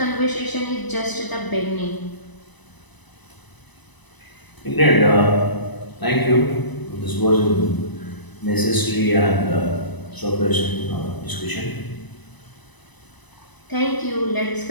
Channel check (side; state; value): right; late; 1.0 ms